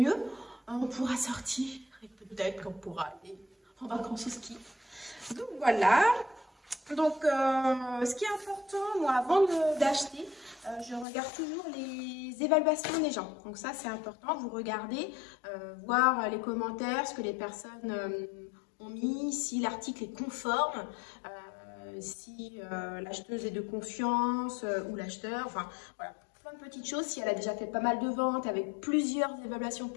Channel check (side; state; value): right; drops out; at 11.1 s